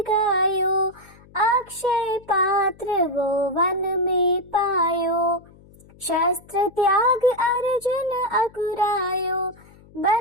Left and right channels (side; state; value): left; noise; hum, 25 dB below the sound